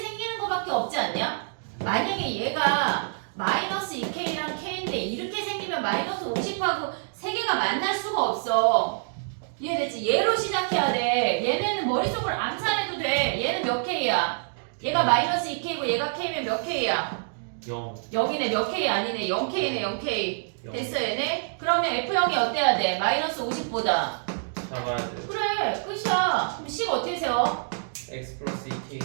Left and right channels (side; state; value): left; silent; digital silence